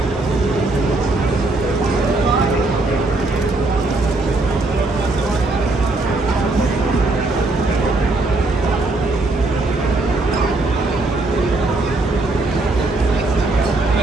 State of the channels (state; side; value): quieter; left; 3.1 dB